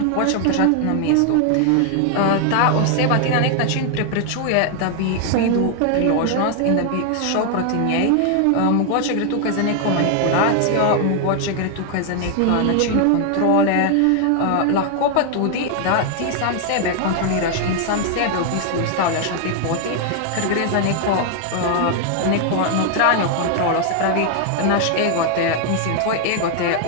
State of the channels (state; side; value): different; both; correlation 0.00